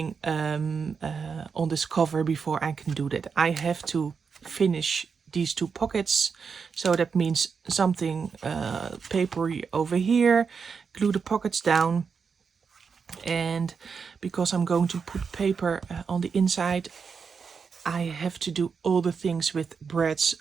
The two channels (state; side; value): quieter; left; 5.8 dB